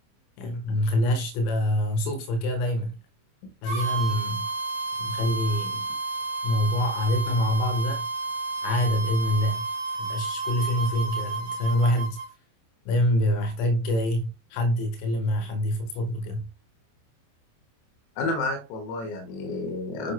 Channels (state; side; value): late; right; 26 ms